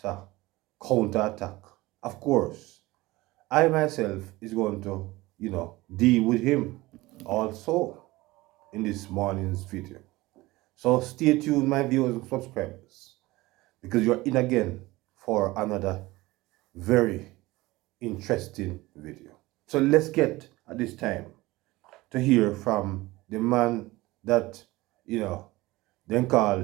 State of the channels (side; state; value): left; quieter; 19.9 dB